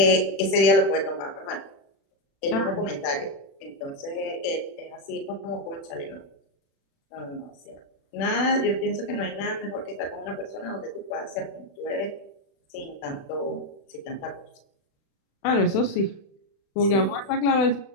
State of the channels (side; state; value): right; late; 36 ms